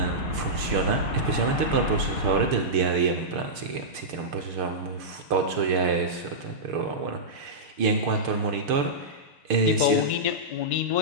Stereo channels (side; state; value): left; late; 6.7 ms